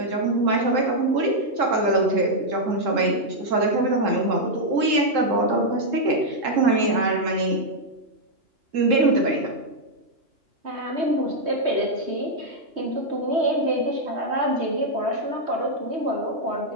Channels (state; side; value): late; left; 3.7 ms